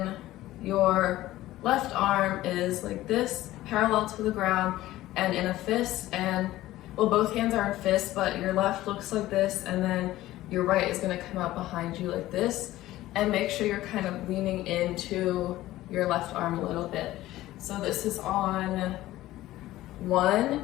your left arm is like this, parallel to the ground and in a fist, and well, both hands are in fists, but your left looks like this, and then your right is going to come out behind you like this, and make sure you're kind of leaning into your left arm a little bit. So this is on 1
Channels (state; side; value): quieter; right; 15.7 dB